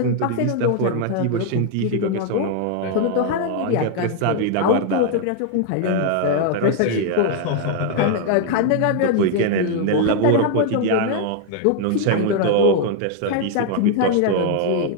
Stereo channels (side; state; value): both; different; correlation 0.00